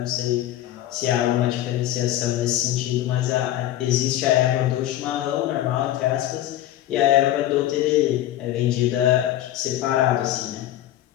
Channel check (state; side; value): quieter; right; 13.4 dB